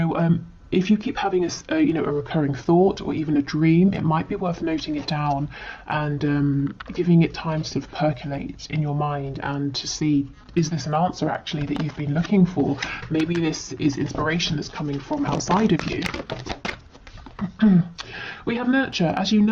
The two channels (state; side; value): identical; both; correlation 1.00